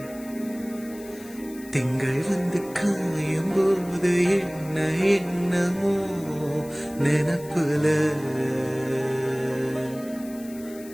திங்கள் வந்து காயும் போது என்ன என்னமோ நினப்புல,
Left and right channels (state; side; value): noise; left; hiss, 20 dB below the sound